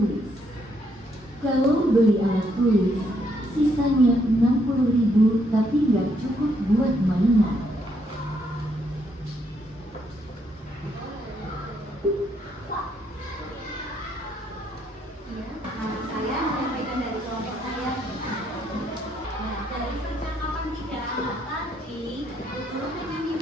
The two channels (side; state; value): both; normal; correlation 0.73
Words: Kalau beli alat tulis, sisanya 60.000 tapi nggak cukup buat mainan." Nama saya menyampaikan dari kelompok saya. Nah, dari percakapan 3 anak tadi, guru